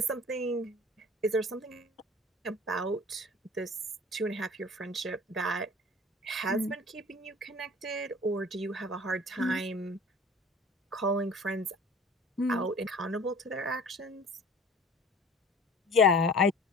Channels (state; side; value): normal; both; correlation 0.44